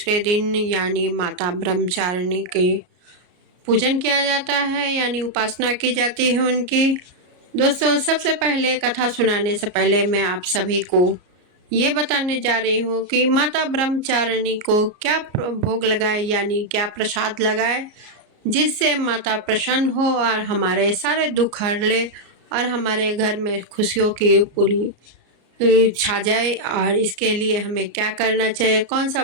दिन यानी माता ब्रह्मचारिणी के पूजन किया जाता है, यानी उपासना की जाती है उनकी। दोस्तों, सबसे पहले कथा सुनाने से पहले मैं आप सभी को ये बताने जा रही हूँ कि माता ब्रह्मचारिणी को क्या भोग लगाए, यानी क्या प्रसाद लगाए, जिससे माता प्रसन्न हो और हमारे सारे दुख हर ले और हमारे घर में खुशियों की पूरी छा जाए। और इसके लिए हमें क्या करना चाहिए, कौन सा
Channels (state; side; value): late; left; 33 ms